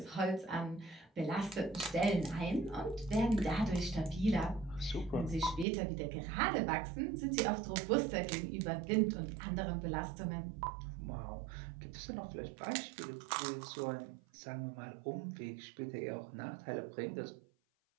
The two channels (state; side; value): drops out; left; at 5.7 s